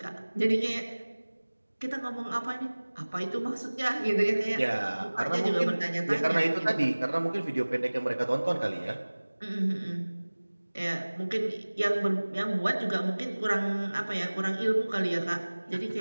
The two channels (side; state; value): both; inverted; correlation -1.00